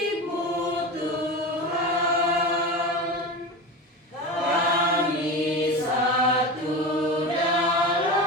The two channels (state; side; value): normal; both; correlation 0.26